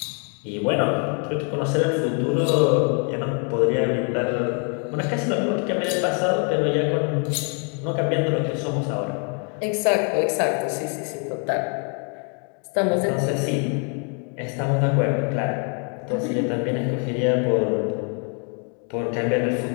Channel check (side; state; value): right; quieter; 39.8 dB